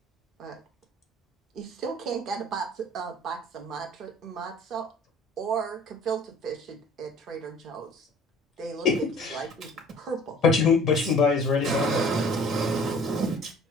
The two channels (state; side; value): normal; both; correlation 0.49